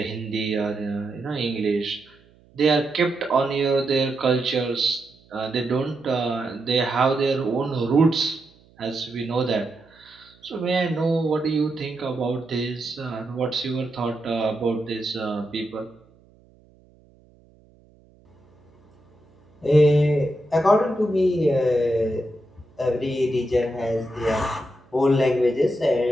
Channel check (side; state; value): right; noise; hum, 30 dB below the sound